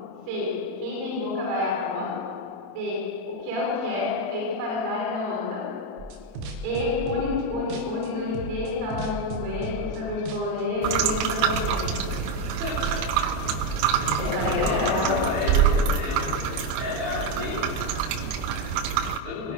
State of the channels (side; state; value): left; late; 27 ms